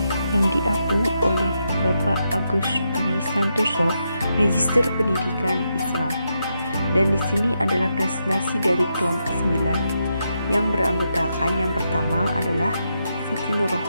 yang diapu oleh Bapak Agus Dwi Santoso, Magister Pendidikan Islam. Dan di sini adalah presentasi dari kelompok 9 yang beranggotakan yang pertama adalah Siti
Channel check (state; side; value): inverted; both; correlation -0.83